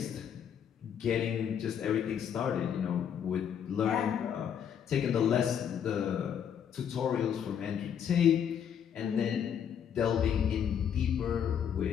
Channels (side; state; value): right; quieter; 8.5 dB